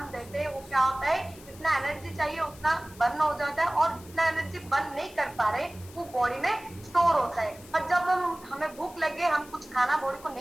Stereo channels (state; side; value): noise; left; hiss, 21 dB below the sound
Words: देते हैं वो क्या होता है, जितना एनर्जी चाहिए उतना बर्न हो जाता है और जितना एनर्जी बर्न नहीं कर पा रहे वो बॉडी में स्टोर होता है। और जब हमें भूख लगे, हम कुछ खाना बॉडी को